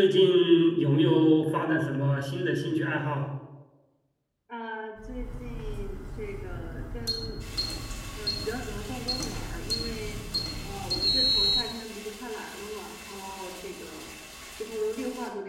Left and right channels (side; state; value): both; identical; correlation 1.00